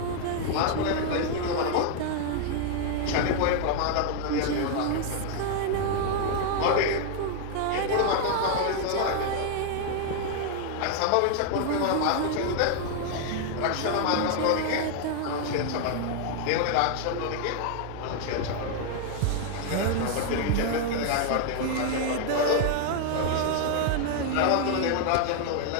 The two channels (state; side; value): different; both; correlation 0.00